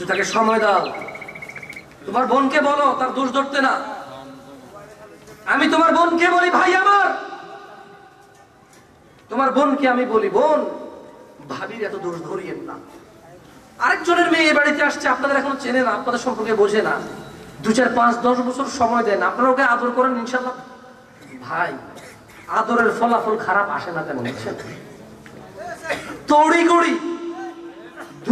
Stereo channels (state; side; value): identical; both; correlation 1.00